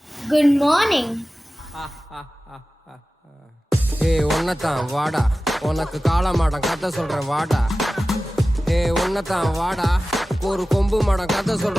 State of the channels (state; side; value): normal; both; correlation 0.96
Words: Good morning. ஏய் ஒன்னதான் வாடா, உனக்கு காளமாடம் கதை சொல்றேன் வாடா. ஏய் ஒன்னதான் வாடா, ஒரு கொம்பு மாடம் கதை